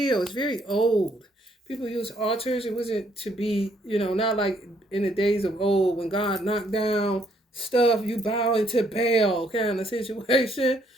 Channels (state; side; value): normal; both; correlation 0.69